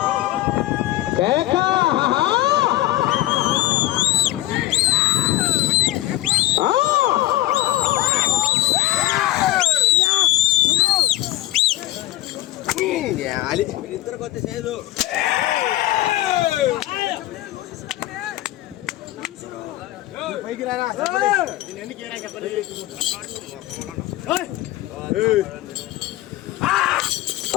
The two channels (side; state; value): right; quieter; 15.8 dB